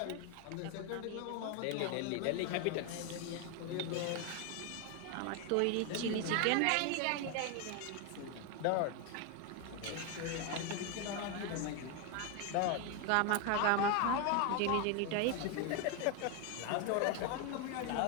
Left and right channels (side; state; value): both; different; correlation 0.01